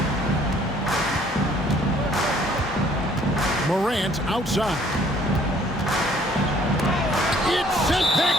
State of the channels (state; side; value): normal; both; correlation 0.59